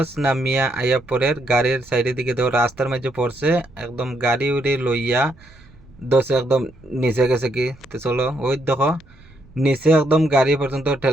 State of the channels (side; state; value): right; noise; rumble, 25 dB below the sound